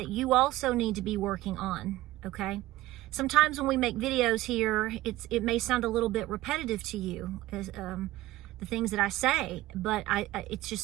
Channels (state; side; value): quieter; left; 16.8 dB